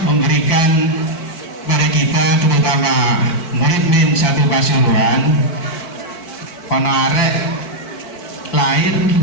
memberikan pada kita, terutama murid min satu Pasuruan, arek lahir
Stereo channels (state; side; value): late; right; 4.5 ms